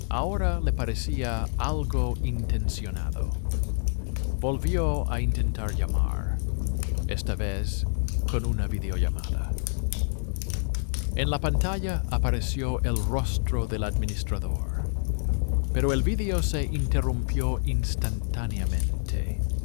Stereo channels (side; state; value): right; silent; 60 dB below the other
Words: Ahora le parecía algo intencionado. Volvió a intentar llamar, esta vez con una videollamada. En la pantalla apareció el rostro del administrador, pero el vídeo se interrumpió instantáneamente